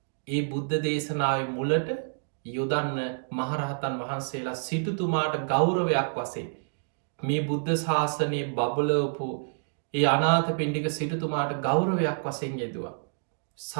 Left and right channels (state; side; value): silent; left; digital silence